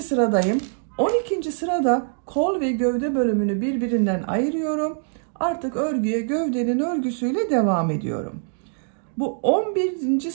sıradayım. 12. sırada kol ve gövde bölümünü birbirinden ayırıyorum. Artık örgüye gövdenin örgüsüyle devam ediyorum. Bu 11.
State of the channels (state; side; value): silent; left; digital silence